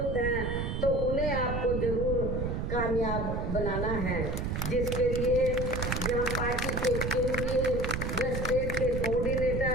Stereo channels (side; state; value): right; noise; rumble, 1 dB below the sound